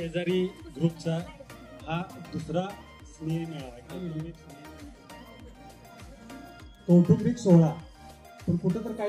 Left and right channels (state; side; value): identical; both; correlation 1.00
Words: ग्रुपचा हा दुसरा स्नेह मेळावा कौटुंबिक सोहळा. पण कुठं तर